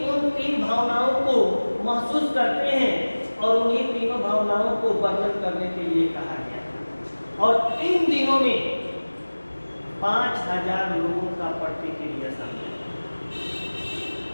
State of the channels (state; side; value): inverted; both; correlation -1.00